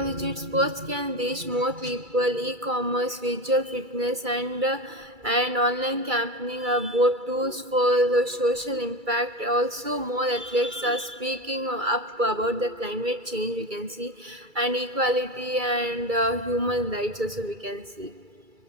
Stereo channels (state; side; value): late; left; 2.3 ms